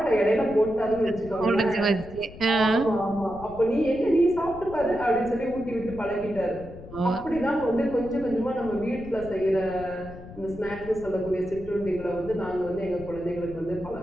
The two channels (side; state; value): left; noise; rumble, 15 dB below the sound